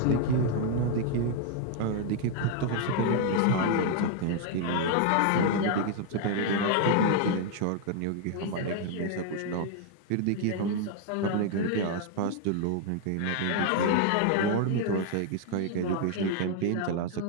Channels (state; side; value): different; both; correlation 0.00